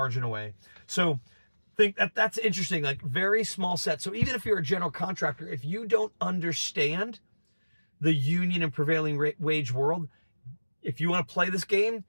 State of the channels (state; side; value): inverted; both; correlation -1.00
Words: away. So think that's interesting. Like, very small set. So even if you're a general contractor, if you don't understand the union and prevailing wage world, if you want to play this game,